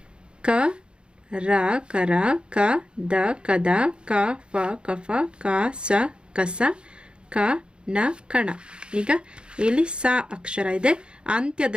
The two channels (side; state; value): left; late; 0.053 ms